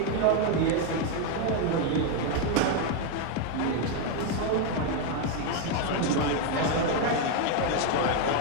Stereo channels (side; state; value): both; different; correlation 0.01